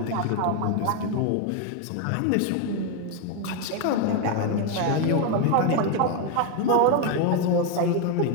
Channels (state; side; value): different; both; correlation 0.01